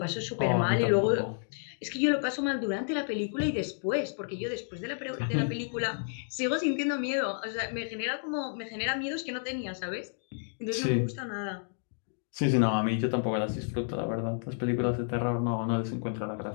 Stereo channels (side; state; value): right; silent; digital silence